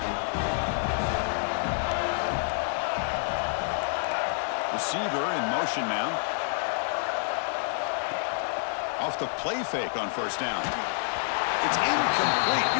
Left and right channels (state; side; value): silent; right; 59 dB below the other